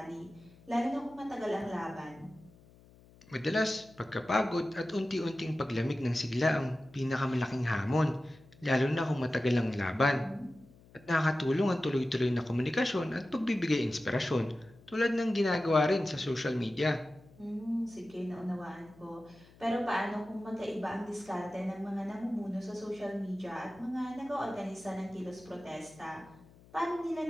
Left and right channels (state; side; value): noise; left; hum, 25 dB below the sound